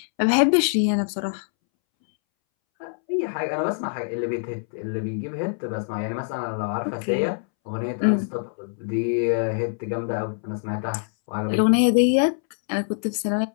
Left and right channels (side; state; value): right; silent; 62 dB below the other